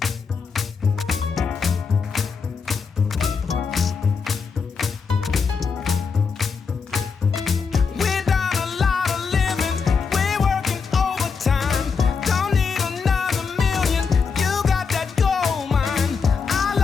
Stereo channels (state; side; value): quieter; right; 5.4 dB